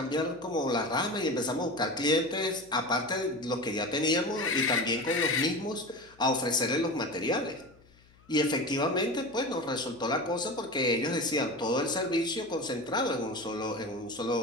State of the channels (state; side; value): noise; left; hum, 29 dB below the sound